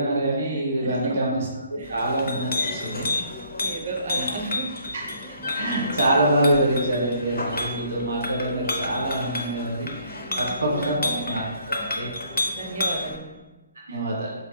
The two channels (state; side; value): inverted; both; correlation -0.64